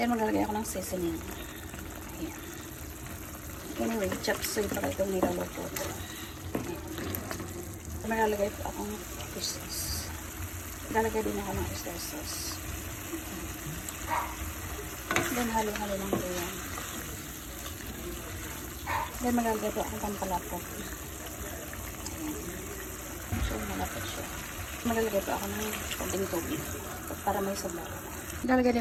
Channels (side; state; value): both; identical; correlation 1.00